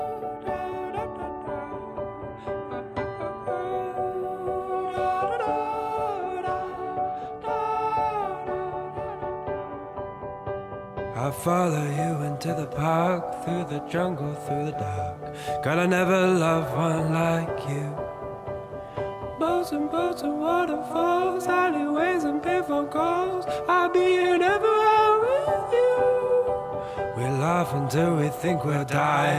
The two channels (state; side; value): identical; both; correlation 1.00